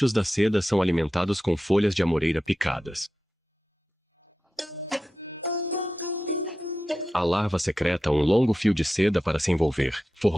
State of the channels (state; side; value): normal; both; correlation 0.91